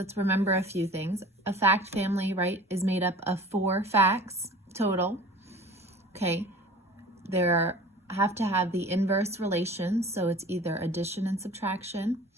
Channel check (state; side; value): normal; both; correlation 0.43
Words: remember a few things. A fact family, right, is made up of 4 facts total. Okay, there have to have the inverse relations, so it's either addition and subtraction